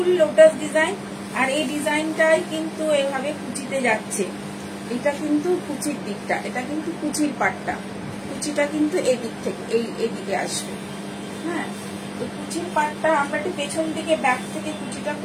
lotus design. আর এই ডিজাইনটাই কিন্তু এভাবে কুচিতে যাচ্ছে, এটা কিন্তু কুচির দিকটা, এটা কিন্তু কুচির পাটটা, কুচিটা কিন্তু এই দিক থেকে এইদিকে আসবে। হ্যাঁ, তো কুচির পাটটা আমরা একটু পেছন দিকে ব্যাক থেকে কুচিটা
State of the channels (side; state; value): both; identical; correlation 1.00